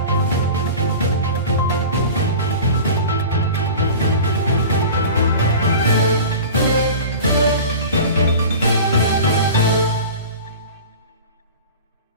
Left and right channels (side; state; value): both; inverted; correlation -0.36